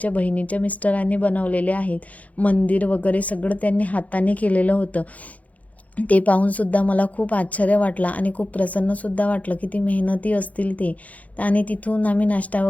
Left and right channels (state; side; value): late; right; 0.071 ms